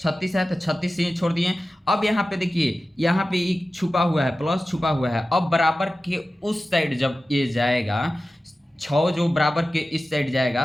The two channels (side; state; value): both; normal; correlation 0.95